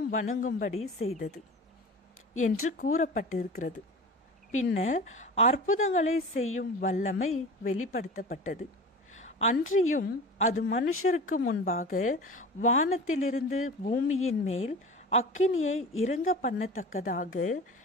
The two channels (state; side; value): normal; both; correlation 0.35